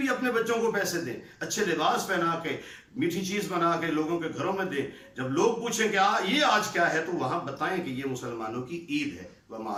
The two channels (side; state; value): both; identical; correlation 1.00